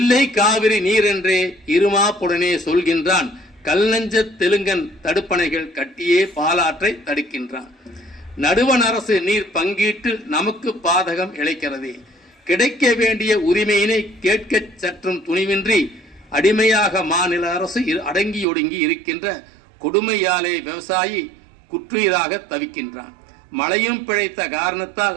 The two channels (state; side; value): drops out; left; at 18.4 s